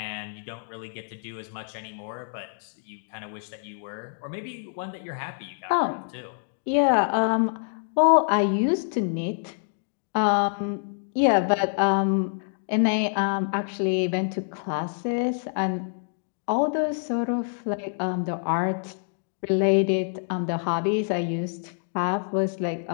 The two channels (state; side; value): silent; right; digital silence